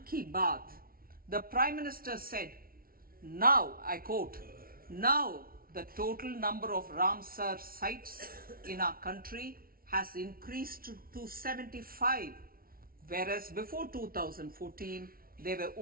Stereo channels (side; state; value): left; late; 0.43 ms